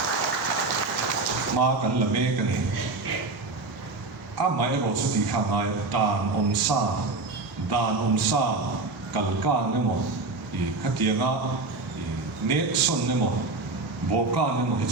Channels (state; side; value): quieter; left; 3.5 dB